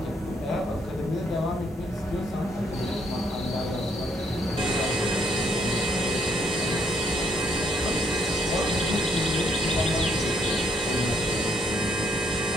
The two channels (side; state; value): both; normal; correlation 0.72